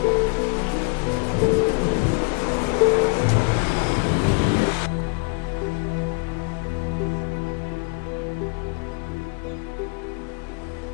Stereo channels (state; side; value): quieter; right; 33.6 dB